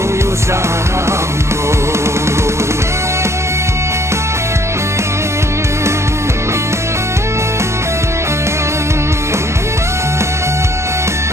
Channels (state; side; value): late; left; 0.13 ms